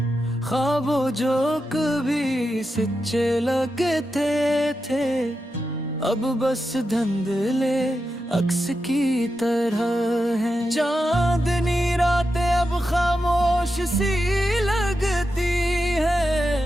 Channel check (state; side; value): normal; both; correlation 0.88